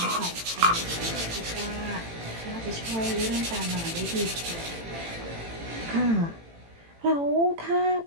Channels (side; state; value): left; late; 18 ms